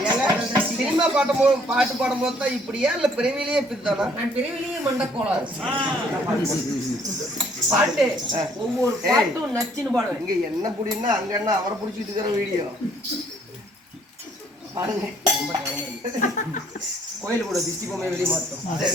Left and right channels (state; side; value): normal; both; correlation 0.63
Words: சினிமா பாட்டு பாடும்போது தான் இப்படியா இல்ல பிறவிலேயே இப்படிதானா? நான் பிறவிலேயே மண்டக்கோளாறு. பாட்டு ஒவ்வொரு பாட்டும் நச்சுன்னு பாடுவேன். இங்க என்ன புடின்னா அங்க என்ன அவரை புடிச்சிட்டு இருக்கிற வீடியோ பாருங்க. கோயில் கூட திஷ்டி பொம்மை வெளியே மாத்தோம்.